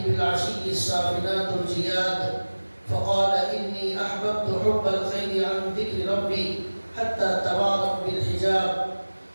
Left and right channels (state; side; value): inverted; both; correlation -1.00